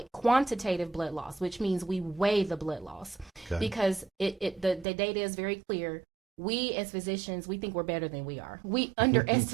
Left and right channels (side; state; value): left; drops out; at 4.9 s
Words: quantitative blood loss, which means we weigh the blood loss, because the data is very clear. We as physicians, we think we're better than we are. We